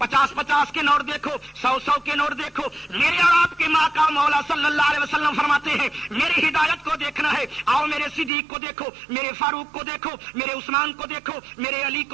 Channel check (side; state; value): left; drops out; at 8.3 s